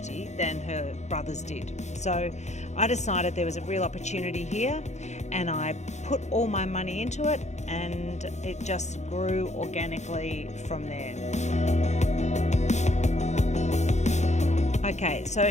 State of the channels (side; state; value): right; late; 0.33 ms